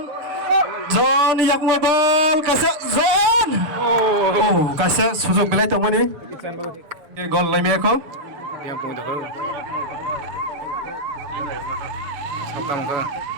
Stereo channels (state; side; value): late; left; 7.1 ms